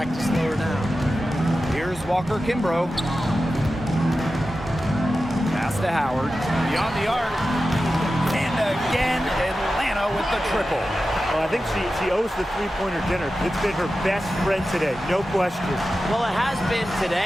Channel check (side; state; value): both; normal; correlation 0.93